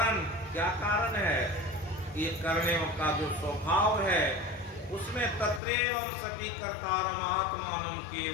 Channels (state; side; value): drops out; right; at 5.6 s